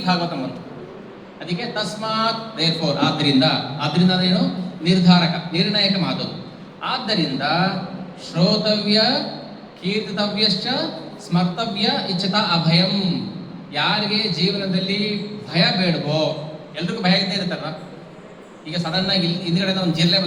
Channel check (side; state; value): both; identical; correlation 1.00